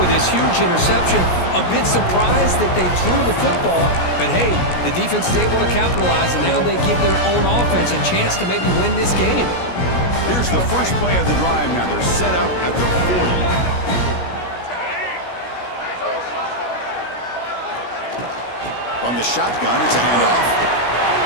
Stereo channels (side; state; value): right; late; 17 ms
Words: this huge interception. A bit surprised that they threw the football, but hey, the defense is able to capitalize, and now they give their own offense a chance to maybe win this game. Here's the first play of the drive now. They're set up at the 40. from the shotgun. It's a handoff.